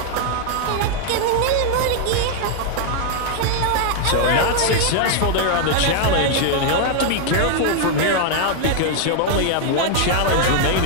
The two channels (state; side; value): different; both; correlation 0.00